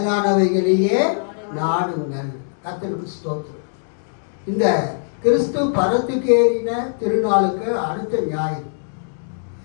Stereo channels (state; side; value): silent; right; digital silence